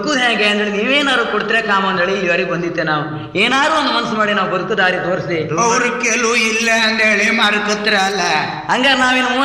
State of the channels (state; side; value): identical; both; correlation 1.00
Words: ಹೇಗೆ ಅಂದೇಳಿ ನೀವೇನಾದ್ರು ಕೊಡ್ತೀರ ಕಾಮ ಅಂದೇಳಿ ಇಲ್ಲಿವರೆಗೆ ಬಂದಿತ್ತೆ. ನಾವು ಏನಾದ್ರು ಒಂದು ಮನಸ್ಸು ಮಾಡಿ ನಾವು ಬದುಕು ದಾರಿ ತೋರಿಸಿ. ಅವ್ರ ಕೆಲವು ಇಲ್ಲ ಅಂದೇಳಿ ಮಾರ್ಕತ್ರಲ್ಲ. ಹಂಗಾರೆ